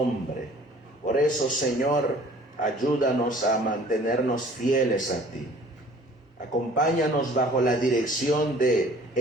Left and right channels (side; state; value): both; normal; correlation 0.52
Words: Por eso, Señor, ayúdanos a mantenernos fieles a ti. Acompáñanos bajo la dirección de